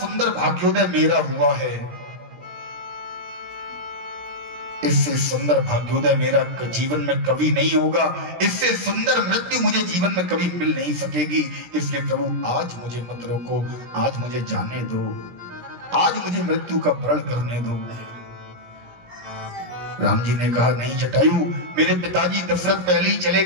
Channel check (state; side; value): late; left; 17 ms